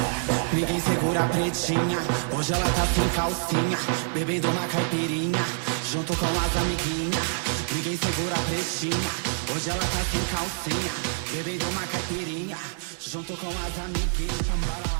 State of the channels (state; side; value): silent; left; digital silence